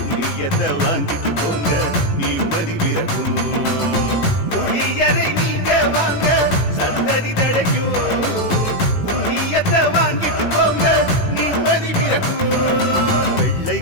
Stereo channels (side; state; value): right; late; 18 ms